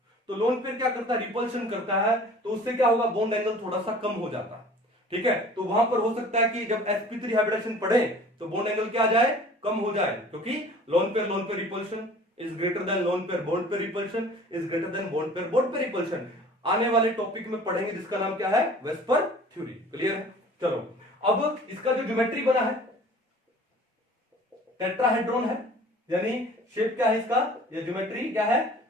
लोन पेयर क्या करता है, रिपल्शन करता है, तो उससे क्या होगा, बॉन्ड एंगल थोड़ा सा कम हो जाता है, ठीक है। तो वहां पर हो सकता है कि जब sp3 हाइब्रिडाइजेशन पढ़े तो बॉन्ड एंगल क्या आ जाए, कम हो जाए, क्योंकि lone pair repulsion is greater than lone pair bond pair repulsion is greater than bond pair repulsion. आने वाले टॉपिक में पढ़ेंगे जिसका नाम क्या है, वेस्पर थ्योरी। क्लियर है? चलो, अब इसका जो ज्योमेट्री बना है टेट्राहेड्रॉन है, यानी शेप क्या है इसका, ये ज्योमेट्री क्या है,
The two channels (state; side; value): normal; both; correlation 0.47